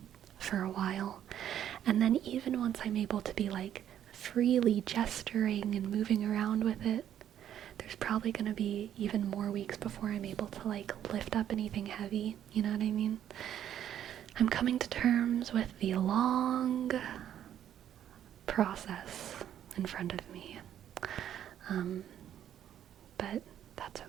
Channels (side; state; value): left; quieter; 10.5 dB